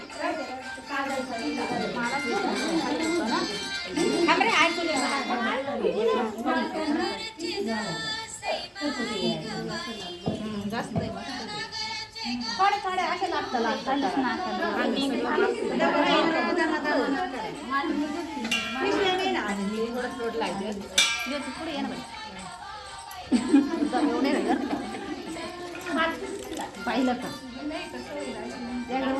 जास्त थोडे थोडे असे लागतात पुढे ये ना पाहिलं का त्याला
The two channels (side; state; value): both; identical; correlation 1.00